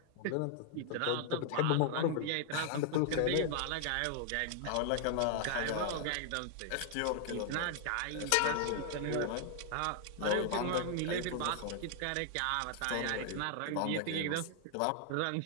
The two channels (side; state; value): both; different; correlation 0.00